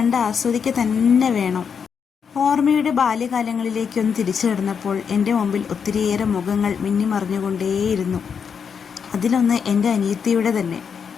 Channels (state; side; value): quieter; right; 6.7 dB